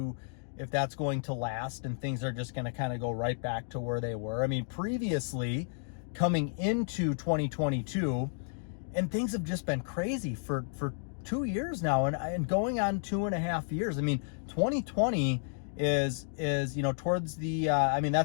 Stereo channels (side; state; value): right; silent; digital silence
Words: last and things are just going to kind of go right back to where they were. I mean, previously coming into 2022, and things have just been crazy for 2 years now and going on 2.5 years. I mean, 2020 is, you know, towards the, I mean,